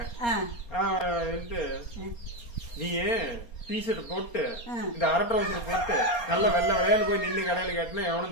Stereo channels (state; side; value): late; right; 4.3 ms